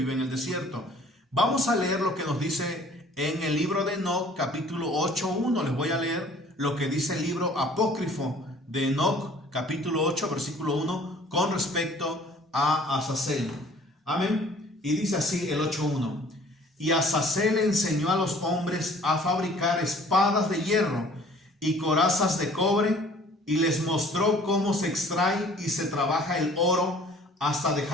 en el desierto. Vamos a leer lo que nos dice en el libro de Enoc, capítulo 8:1. Les voy a leer lo que dice el libro apócrifo de Enoc, capítulo 8, versículo 1, con respecto a Azazel. Amén. Y dice así el 8:1. Y Azazel enseñó a los hombres a fabricar espadas de hierro y corazas de cobre, y les mostró cómo se extrae y se trabaja el oro hasta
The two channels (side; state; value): both; normal; correlation 0.53